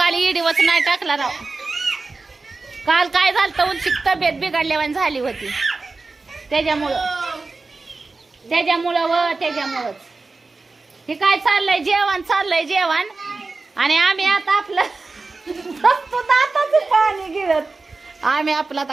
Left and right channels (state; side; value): quieter; left; 3.8 dB